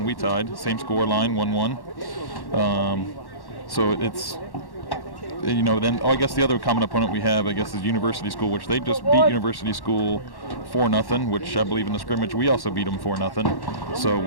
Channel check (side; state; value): right; late; 1.1 ms